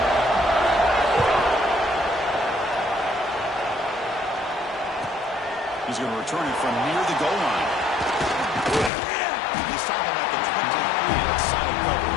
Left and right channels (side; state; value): right; drops out; at 8.9 s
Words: He's going to return it from near the goal line. He's stopping at the 23. That's solid